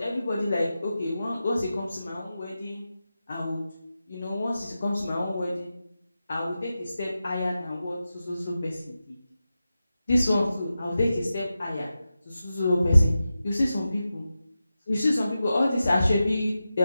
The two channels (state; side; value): inverted; both; correlation -0.92